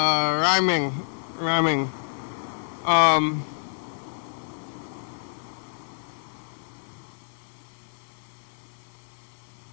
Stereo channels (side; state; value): right; silent; 60 dB below the other